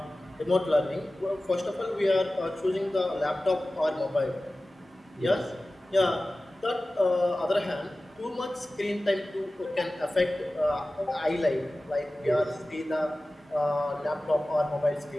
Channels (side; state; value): both; normal; correlation 0.96